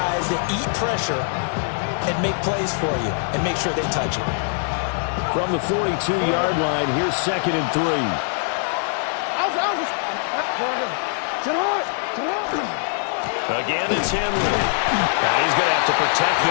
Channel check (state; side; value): silent; right; 60 dB below the other